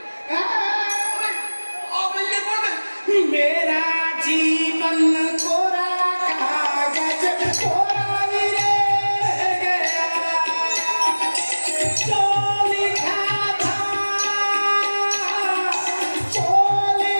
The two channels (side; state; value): both; inverted; correlation -1.00